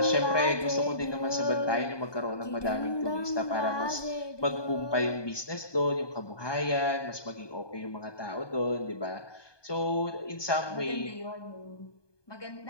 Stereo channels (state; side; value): late; right; 1.2 ms